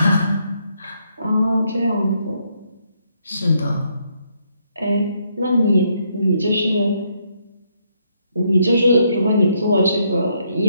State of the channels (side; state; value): both; inverted; correlation -0.74